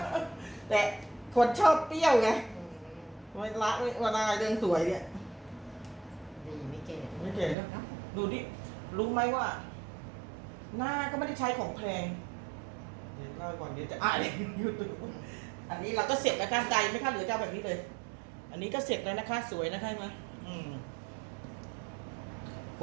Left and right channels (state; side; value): drops out; left; at 7.6 s